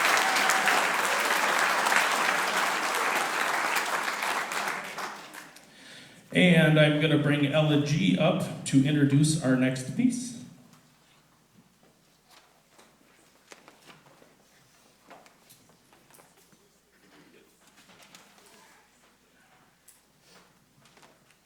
And I'm going to bring Ella G up to introduce our next piece.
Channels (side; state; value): both; identical; correlation 1.00